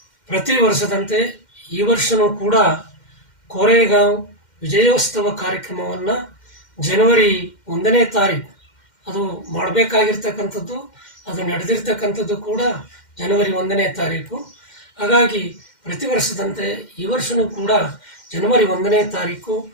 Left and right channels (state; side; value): late; right; 2.1 ms